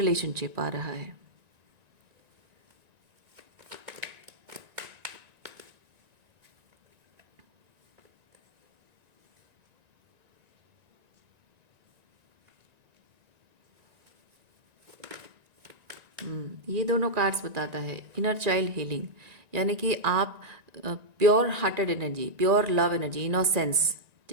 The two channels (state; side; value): late; left; 1.9 ms